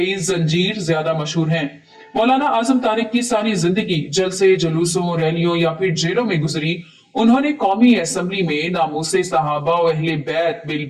जंजीर ज्यादा मशहूर हैं। मौलाना आजम तारिक की सारी जिंदगी जलसे, जुलूसों, रैलियों या फिर जेलों में गुजरी। उन्होंने कौमी असेंबली में नामूसे सहाबा और अहले बैत बिल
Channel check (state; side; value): identical; both; correlation 1.00